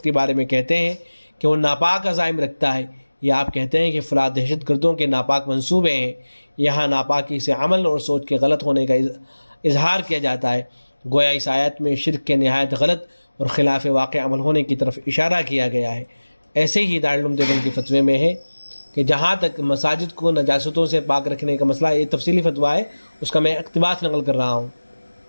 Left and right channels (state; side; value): inverted; both; correlation -1.00